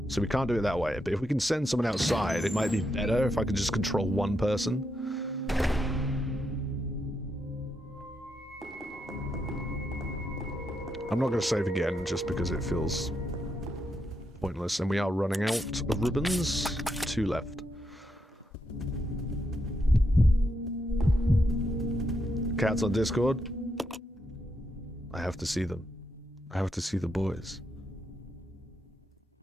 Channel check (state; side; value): normal; both; correlation 0.82